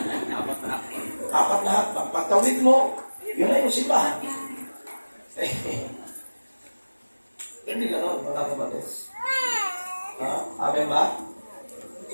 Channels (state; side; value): inverted; both; correlation -1.00